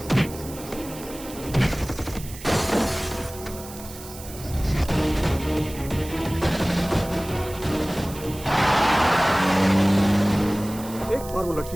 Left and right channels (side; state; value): right; noise; hiss, 15 dB below the sound